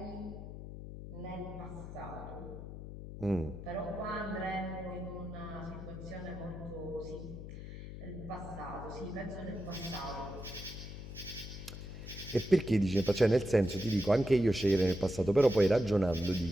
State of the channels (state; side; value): noise; left; hum, 10 dB below the sound